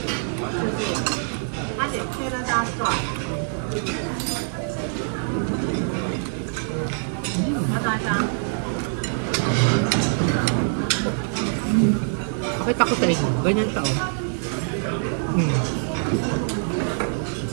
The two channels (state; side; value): silent; left; digital silence